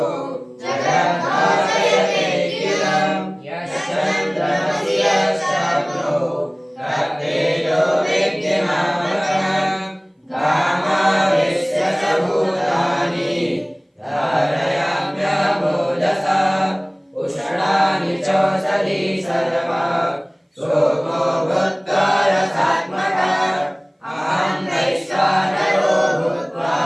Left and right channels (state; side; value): identical; both; correlation 1.00